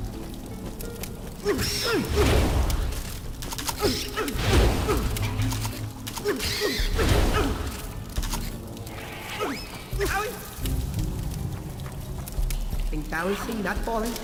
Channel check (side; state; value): both; identical; correlation 1.00